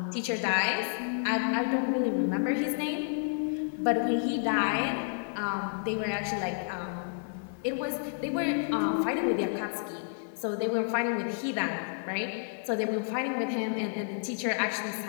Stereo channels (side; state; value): right; silent; digital silence